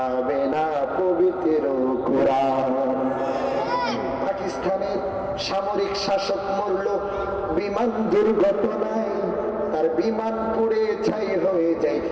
না পবিত্র কোরআন। পাকিস্তানের সামরিক শাসক মরল বিমান দুর্ঘটনায়, তার বিমান পুড়ে ছাই হয়ে যায়,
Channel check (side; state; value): both; identical; correlation 1.00